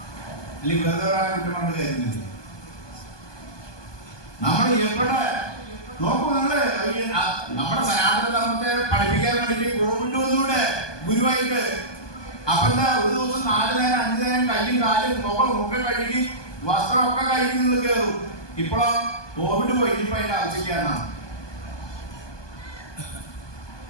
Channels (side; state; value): right; late; 1.2 ms